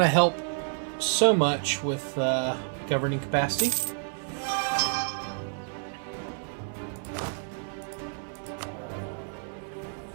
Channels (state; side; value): silent; left; 58 dB below the other